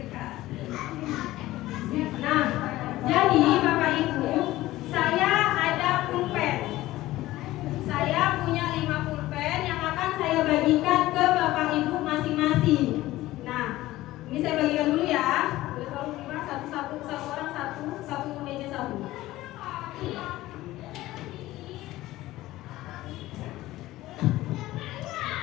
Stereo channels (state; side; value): quieter; right; 16.7 dB